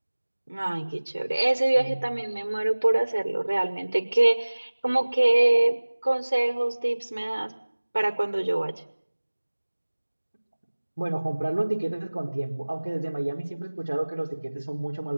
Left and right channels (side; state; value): both; inverted; correlation -1.00